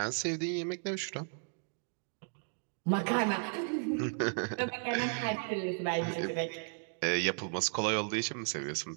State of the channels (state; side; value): silent; left; 55 dB below the other